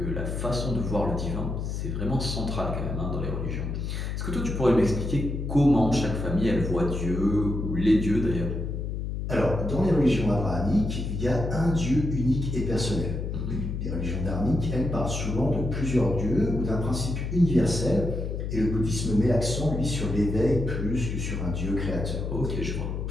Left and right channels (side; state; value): left; noise; hum, 3 dB below the sound